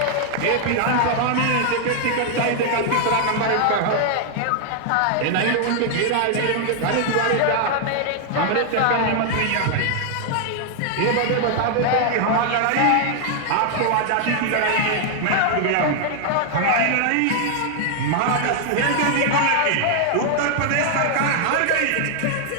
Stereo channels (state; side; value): different; both; correlation 0.00